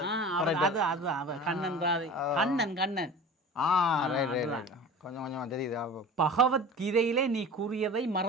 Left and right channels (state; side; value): normal; both; correlation 0.37